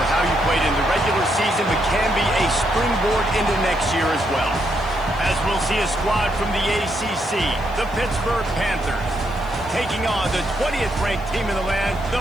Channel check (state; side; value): noise; right; hiss, 27 dB below the sound